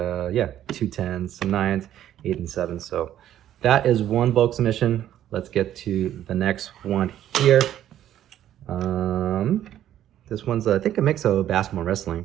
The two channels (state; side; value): quieter; left; 11.6 dB